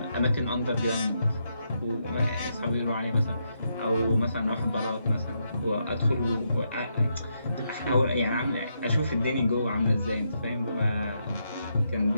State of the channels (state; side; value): inverted; both; correlation -0.80